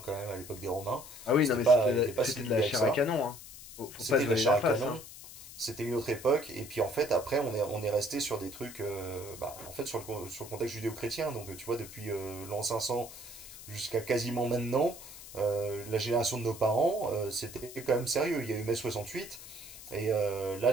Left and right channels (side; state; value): left; noise; hiss, 15 dB below the sound